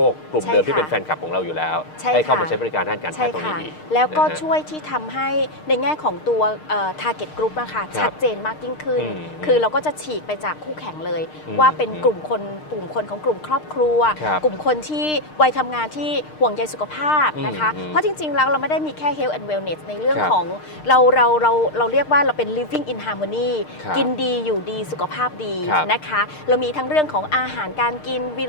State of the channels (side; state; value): right; late; 6.5 ms